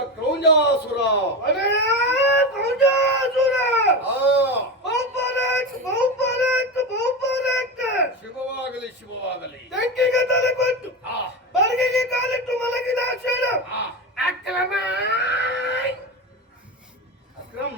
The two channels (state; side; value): normal; both; correlation 0.20